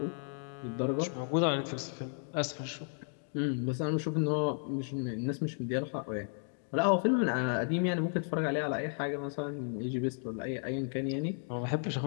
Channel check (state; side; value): silent; right; 55 dB below the other